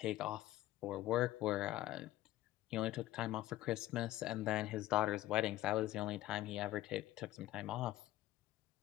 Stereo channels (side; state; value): right; quieter; 15.5 dB